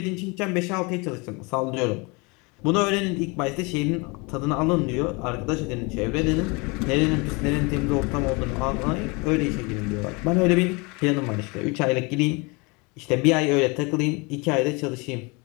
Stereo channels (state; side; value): quieter; right; 28.3 dB